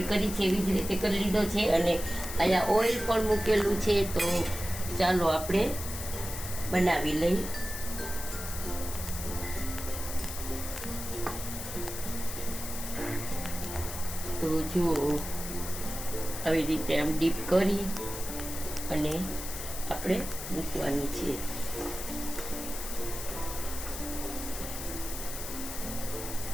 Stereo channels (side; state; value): left; noise; hiss, 8 dB below the sound